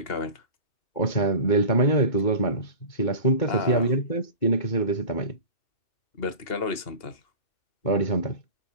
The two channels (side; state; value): right; late; 2.8 ms